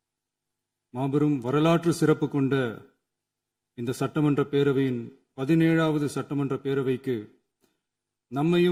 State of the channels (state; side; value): identical; both; correlation 1.00